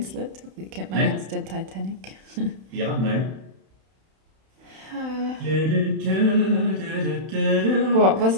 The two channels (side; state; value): left; late; 31 ms